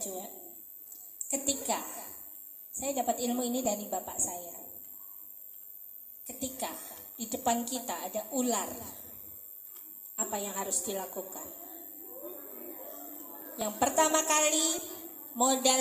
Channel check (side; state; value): both; identical; correlation 1.00